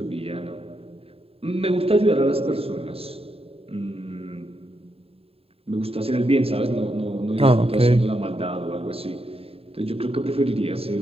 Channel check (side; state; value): left; late; 0.28 ms